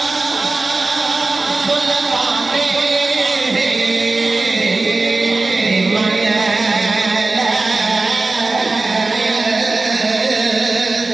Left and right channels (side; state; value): left; quieter; 3.4 dB